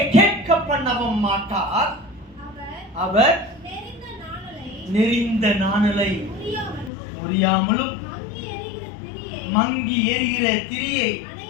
கேட்க பண்ணவும் மாட்டார். அவர் நெறிந்த நாணலை முறியாமலும் மங்கி எரிகிற திரியை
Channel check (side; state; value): right; drops out; at 6.9 s